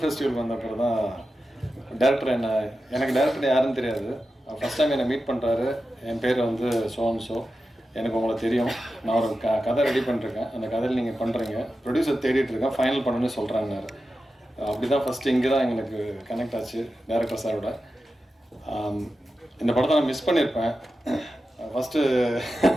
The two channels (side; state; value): both; normal; correlation 0.92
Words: ஃபெஸ்டிவல் வந்த அப்புறம் தான் டேரக்டர் எனக்கு டேரக்டர் யாருன்னு தெரியாது. ஃபஸ்ட் டைம் என்னை மீட் பண்ணுறாரு. என் பேர் வந்து ஸோ எனக்கு உங்களை தெரியும், நான் ஒரு கதை ரெடி பண்ணிருக்கேன், அந்த கதையில் நீங்கள் பண்ணுறீங்க, ப்ரொடியூசர் தேடிட்டுருக்கேன், ஃபைனல் பண்ணணுன்னு சொல்கிறாங்கன்னாரு. அப்படி தான் ஃபஸ்ட்டு இங்கே தான் எங்களுக்கு கனெக்ட் ஆச்சு டேரக்டர் சாரோட. இந்த படத்தை நான் மிஸ் பண்ணியிருப்பேன். ஃபஸ்ட்டு